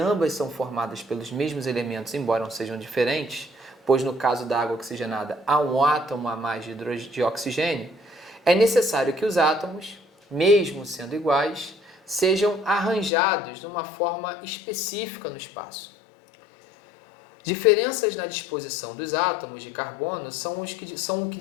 são formadas pelos mesmos elementos, embora não sejam diferentes, pois no caso da água oxigenada há um átomo a mais de oxigênio, é necessário que os átomos, mesmo sendo iguais, sejam arranjados de uma forma específica no espaço. Diferenças na disposição dos átomos de carbono são o que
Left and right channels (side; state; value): right; drops out; at 13.1 s